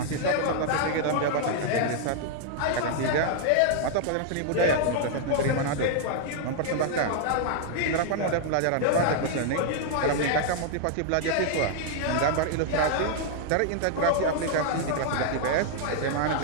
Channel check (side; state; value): both; different; correlation -0.01